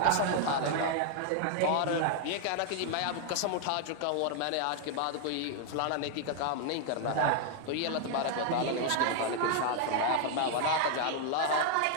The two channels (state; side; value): different; both; correlation 0.00